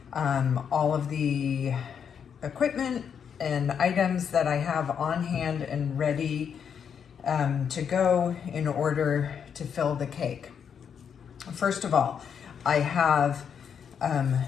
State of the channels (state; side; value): quieter; right; 7.5 dB